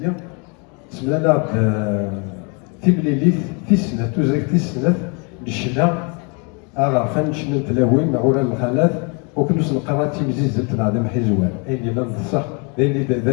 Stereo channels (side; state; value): right; quieter; 34.0 dB